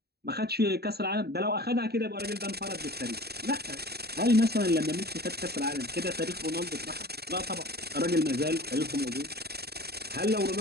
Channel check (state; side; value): late; left; 0.47 ms